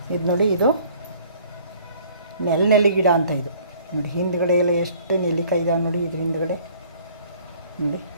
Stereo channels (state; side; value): inverted; both; correlation -0.55